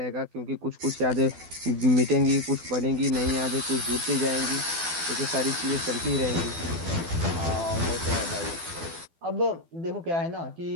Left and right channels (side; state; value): left; late; 12 ms